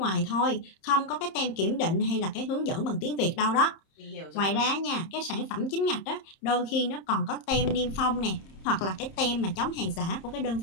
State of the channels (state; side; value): late; right; 30 ms